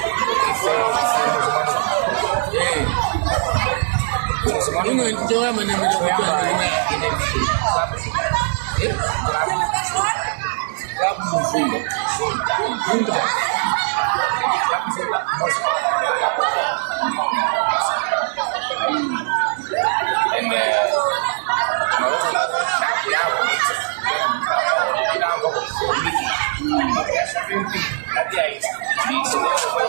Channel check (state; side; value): silent; left; 66 dB below the other